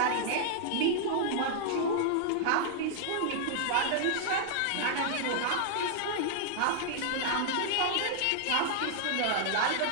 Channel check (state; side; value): different; both; correlation -0.01